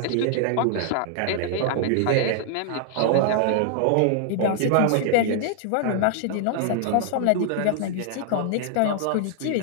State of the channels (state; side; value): different; both; correlation -0.01